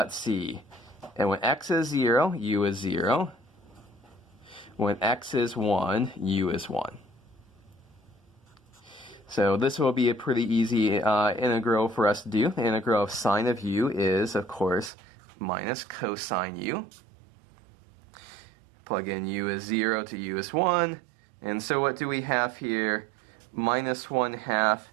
see, and when x is 0, u is 0. When x is 1, u is 1. So this will be a pretty easy integral for us to do. The integral of sine of u is, of course, minus cosine u. Plug in u is 0 to u is 1. And so what do we have here? Minus 1/2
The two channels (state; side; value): drops out; left; at 14.9 s